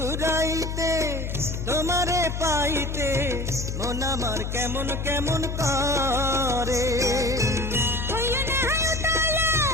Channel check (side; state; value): left; noise; hum, 4 dB below the sound